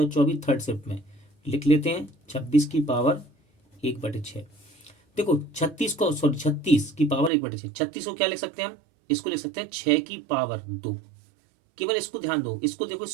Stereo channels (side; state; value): left; drops out; at 7.3 s